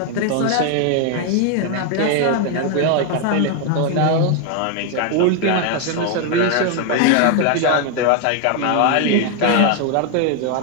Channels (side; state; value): both; different; correlation 0.01